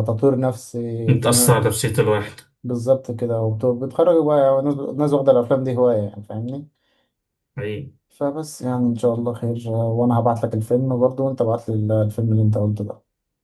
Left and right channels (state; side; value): identical; both; correlation 1.00